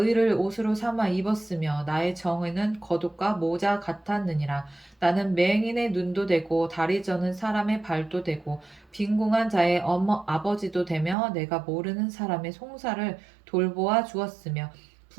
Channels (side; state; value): left; drops out; at 11.2 s